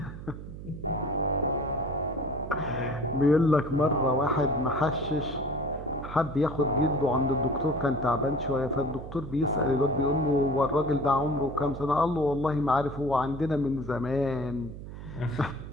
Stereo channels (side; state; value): right; noise; hum, 11 dB below the sound